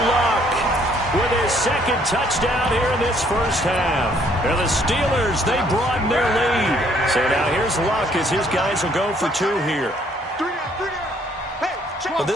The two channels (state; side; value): normal; both; correlation 0.65